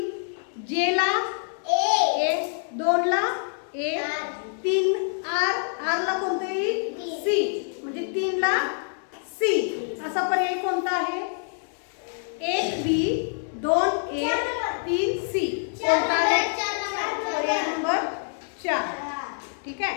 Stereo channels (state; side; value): silent; right; digital silence